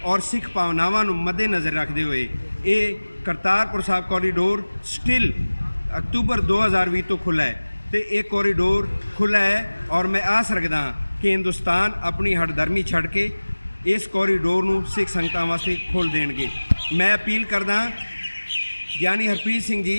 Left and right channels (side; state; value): both; inverted; correlation -1.00